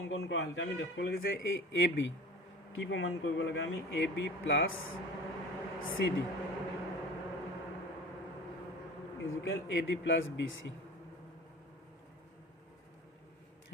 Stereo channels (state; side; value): normal; both; correlation 0.39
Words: কৰা হল আমি দেখব লাগে যে এই AB কি প্ৰমাণ কৰিব লাগে আমি AB + CD equal AD + BC